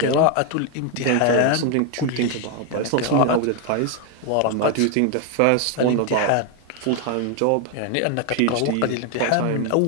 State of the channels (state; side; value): different; both; correlation 0.01